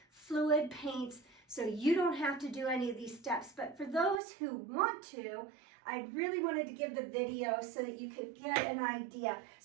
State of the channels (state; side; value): drops out; left; at 4.2 s